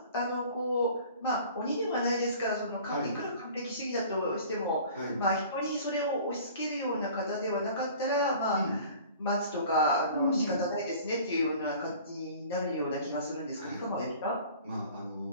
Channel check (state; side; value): inverted; both; correlation -0.46